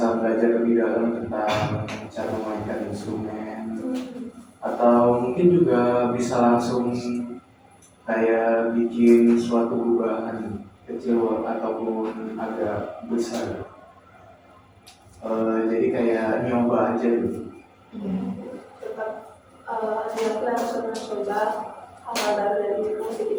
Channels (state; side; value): identical; both; correlation 1.00